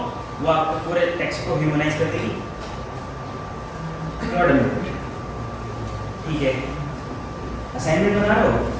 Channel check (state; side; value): identical; both; correlation 1.00